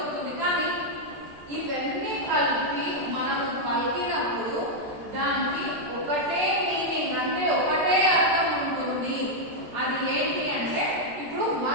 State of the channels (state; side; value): late; left; 13 ms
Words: కానీ ఇవన్నీ కలిపి మనము పలికినప్పుడు దానికి ఒకటే మీనింగ్, అంటే ఒకటే అర్థం ఉంటుంది. అది ఏంటి అంటే ఇప్పుడు